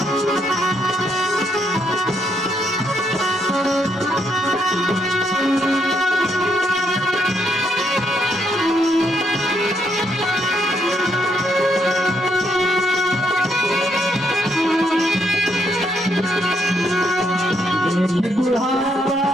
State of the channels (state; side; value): normal; both; correlation 0.74